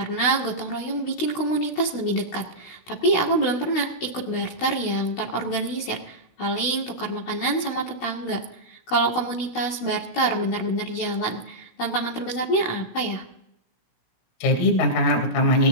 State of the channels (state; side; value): late; right; 16 ms